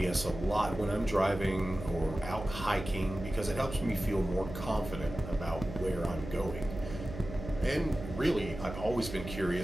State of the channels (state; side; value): noise; right; hum, 10 dB below the sound